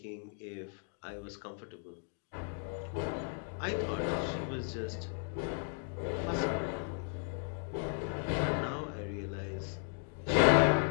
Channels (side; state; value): right; silent; 54 dB below the other